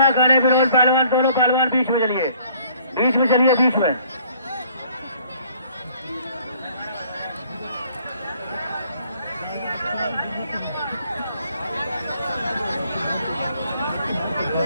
करें विनोद पहलवान, दोनों पहलवान बीच में चलिए, बीच में चलिए, बीच में।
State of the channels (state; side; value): inverted; both; correlation -0.59